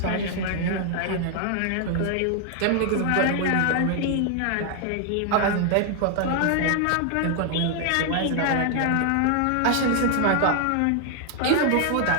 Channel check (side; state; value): both; different; correlation 0.00